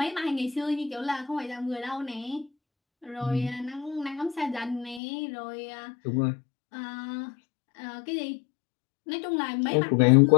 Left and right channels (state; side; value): drops out; right; at 5.0 s